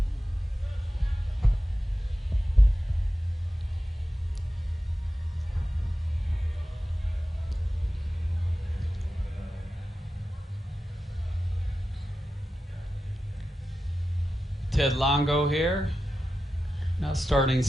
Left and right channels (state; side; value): normal; both; correlation 0.92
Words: Ted Longo here, now starting